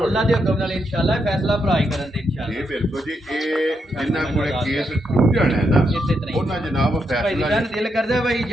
ਅੱਲਾ ਦੇ ਹੁਕਮ ਨਾਲ ਇਨਸ਼ਾਅੱਲਾ ਫੈਸਲਾ ਭਰਾ ਹੀ ਕਰਨ ਦੇ ਇਨਸ਼ਾਅੱਲਾ। ਜੀ ਬਿਲਕੁਲ ਜੀ। ਇਹ ਜਿੰਨਾ ਕੋਲੇ ਕੇਸ ਟੁੱਟ ਜਾਣਾ ਹੈ ਨਾ ਇਸੇ ਤਰ੍ਹਾਂ ਹੀ। ਉਹਨਾਂ ਜਨਾਬ ਭਾਈ ਦੀ ਫੈਸਲਾ ਸ਼ਾਨ ਦਿਲ ਕਰਦਾ ਭਾਈ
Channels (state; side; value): normal; both; correlation 0.81